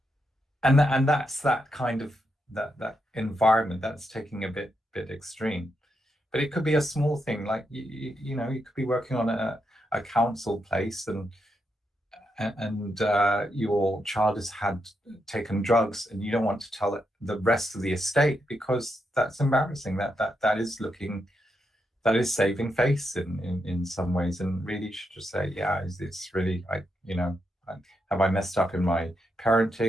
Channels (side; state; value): both; normal; correlation 0.82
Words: and that's that kind of that environment that's taking a bit extreme. But it could be a small thing, like you could be working on a council place, and your child has had taken drugs, and you don't want to tell the rest of the estate because that's embarrassing. That is looking, that is saving face in some ways, and really you should just say, yeah, it's really, have I messed up in my